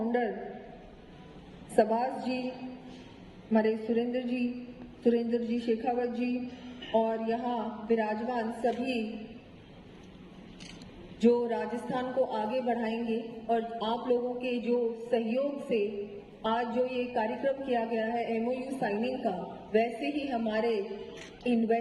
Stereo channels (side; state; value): both; identical; correlation 1.00